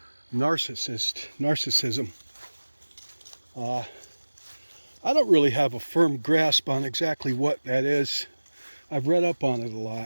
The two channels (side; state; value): both; inverted; correlation -1.00